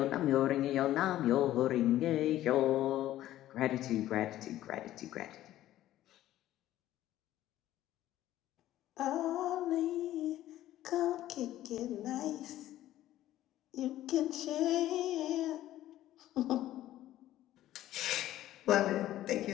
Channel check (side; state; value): right; quieter; 13.8 dB